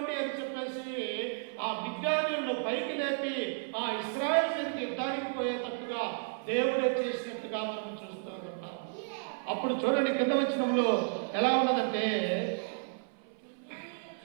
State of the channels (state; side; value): silent; left; 56 dB below the other